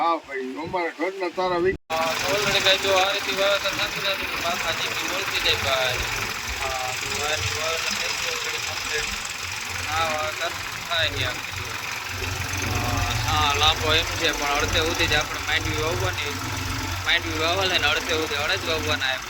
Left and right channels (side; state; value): both; identical; correlation 1.00